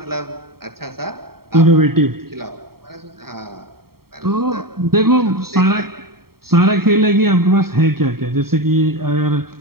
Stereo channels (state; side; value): late; left; 0.94 ms